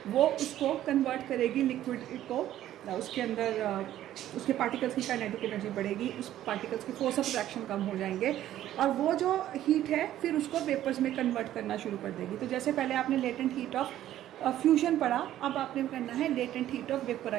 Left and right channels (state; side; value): quieter; left; 12.7 dB